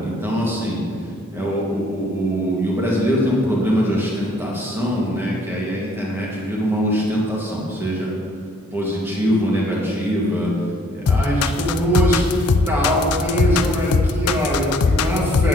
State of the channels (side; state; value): both; normal; correlation 0.62